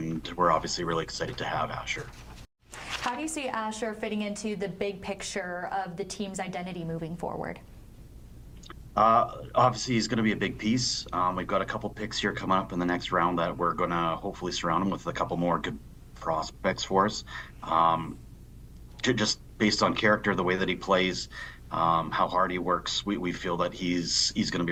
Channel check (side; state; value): both; identical; correlation 1.00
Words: we're obviously really excited to have Asher. How do you see Asher fitting into the big picture of the team's identity moving forward? Obviously, he's going to be a big piece. We've got a couple picks here coming up in the next round that we're going to hopefully surround him with a couple more good prospects for us. Just based on character, the way that he plays, how hard he works, we feel that he's going to